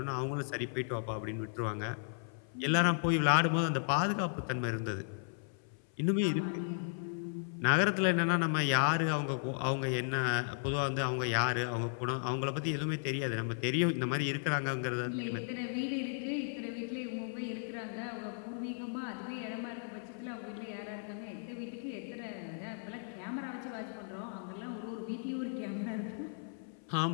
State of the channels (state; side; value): silent; right; 54 dB below the other